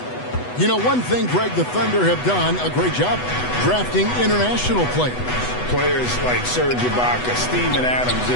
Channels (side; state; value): right; late; 8.1 ms